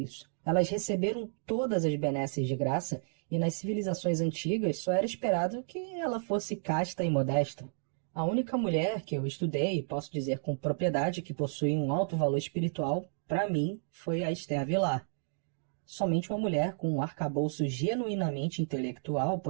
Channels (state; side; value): silent; left; digital silence